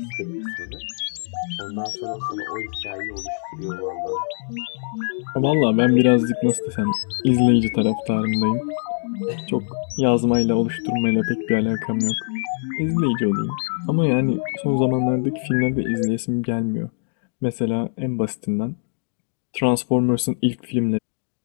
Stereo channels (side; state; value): right; silent; digital silence